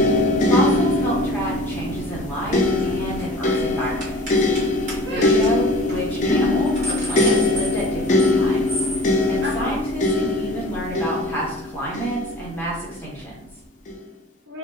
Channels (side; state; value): both; normal; correlation 0.43